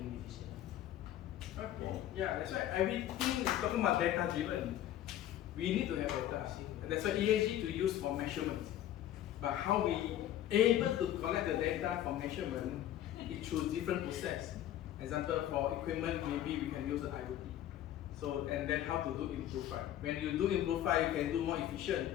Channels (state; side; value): quieter; right; 12.2 dB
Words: decisions. Okay. Yeah, that's why everything is talking about data driven. We need to have data. That's why ESG to use for measurement. But how we able to collect the data from measurement, it through different process. Example, for equipment, maybe we can use the IoT. So, and then how to do improve. When you do improve, you can do more